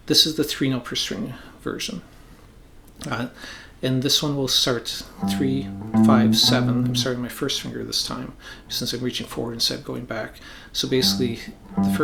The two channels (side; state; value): both; identical; correlation 1.00